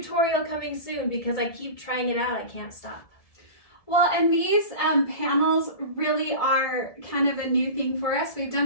coming soon because I keep trying it out. I can't stop. Well, and these panels really are kind of a new thing for us. We've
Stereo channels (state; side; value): late; right; 1.7 ms